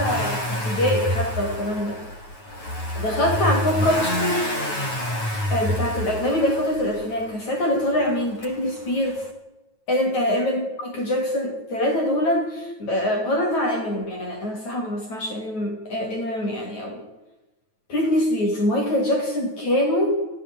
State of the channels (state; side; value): late; right; 9.3 ms